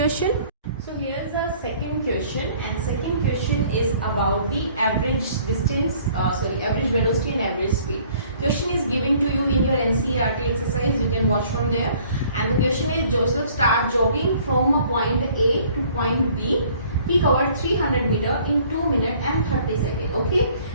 So here's the second question, and second question is about the average distance, average velocity and average speed. Question is given to you in your NCERT exercise. You can watch from there. And the question is, Joseph start jogging from a point A to point B. He covered 300 meter in 2 minutes and 30 seconds. Okay.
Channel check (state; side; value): inverted; both; correlation -0.57